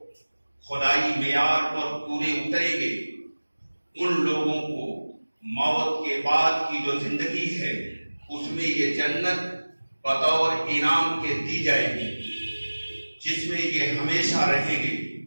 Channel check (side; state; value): both; inverted; correlation -1.00